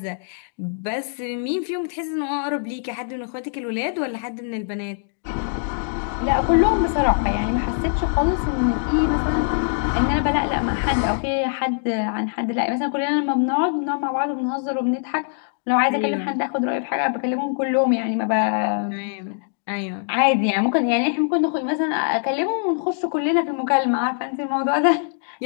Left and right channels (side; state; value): right; silent; digital silence